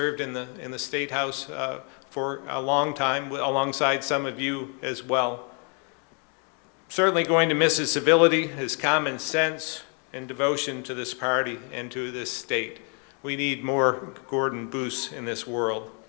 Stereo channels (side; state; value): right; quieter; 38.0 dB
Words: in the State House for a long time, alongside some of you as well. Certainly going to miss his civility, his common sense, and devotion to this party and to this state. We need more Gordon Booths in this world.